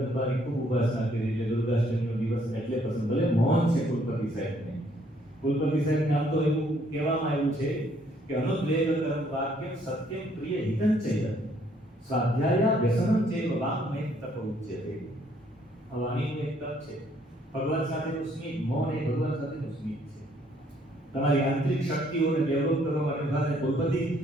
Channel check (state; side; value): normal; both; correlation 0.66